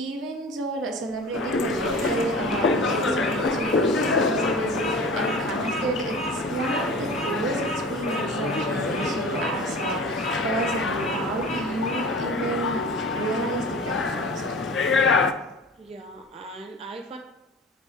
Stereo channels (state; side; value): normal; both; correlation 0.38